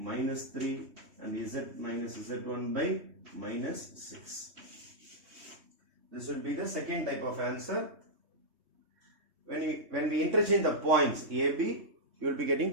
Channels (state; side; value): late; left; 3.2 ms